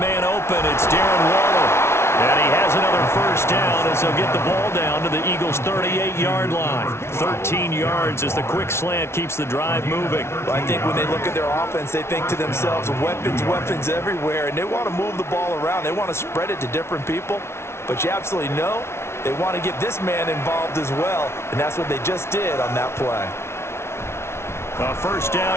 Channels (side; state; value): right; late; 0.12 ms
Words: man open. It's Darren Waller. And he has another first down as they'll get the ball down to the Eagles' 38-yard line. 13 yards as the quick slant keeps the drive moving. Well, I think when they look at their offense, they think to themselves, weapons, weapons everywhere, and they want to move the ball around. They want to spread it to different people. But you absolutely know they want to get this man involved as well, and that's what they just did on that play. A first